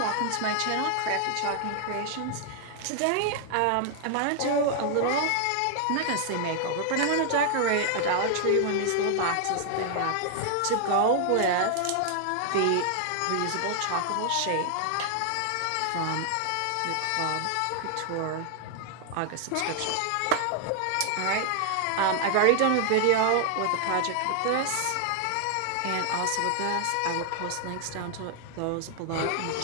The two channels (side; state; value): both; different; correlation 0.00